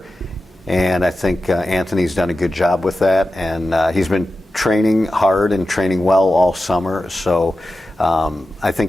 And I think Anthony's done a good job with that, and he's been training hard and training well all summer. So I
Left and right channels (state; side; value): normal; both; correlation 0.93